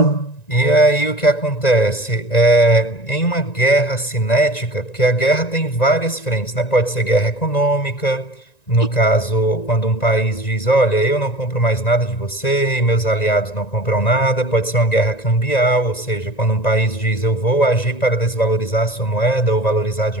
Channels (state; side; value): late; right; 1.9 ms